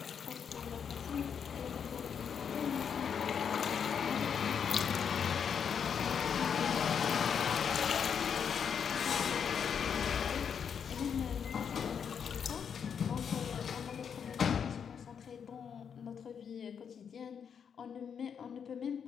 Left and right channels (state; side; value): quieter; right; 7.3 dB